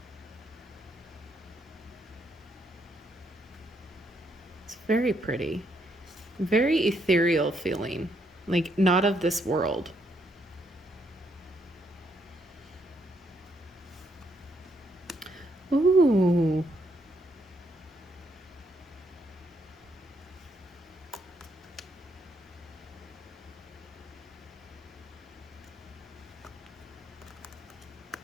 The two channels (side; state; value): both; normal; correlation 0.74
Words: It's very pretty. Very ethereal feeling, like not of this world. Ooh.